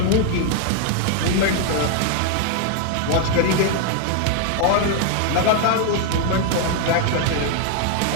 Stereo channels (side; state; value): both; different; correlation 0.00